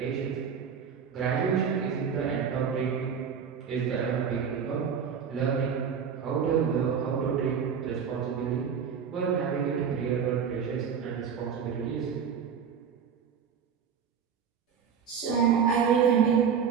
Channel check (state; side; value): quieter; left; 7.1 dB